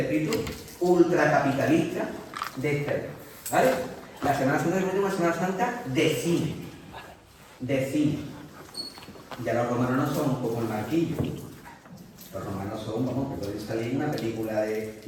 ultracapitalista de este. ¿Vale? La Semana Santa es una Semana Santa de cine. De cine. Ya los romanos no son como el Marquillo. Los romanos son, vamos, que pueden salir en una película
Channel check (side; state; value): both; identical; correlation 1.00